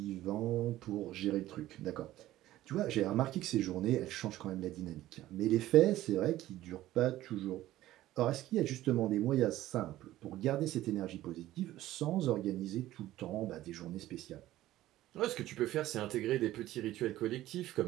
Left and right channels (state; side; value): quieter; left; 15.0 dB